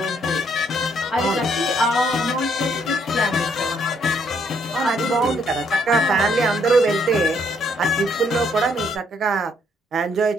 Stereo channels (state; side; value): normal; both; correlation 0.70